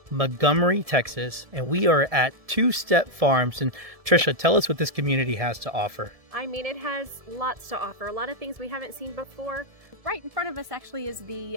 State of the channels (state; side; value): late; left; 1.7 ms